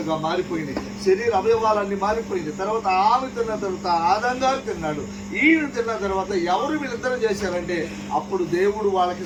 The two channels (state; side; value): identical; both; correlation 1.00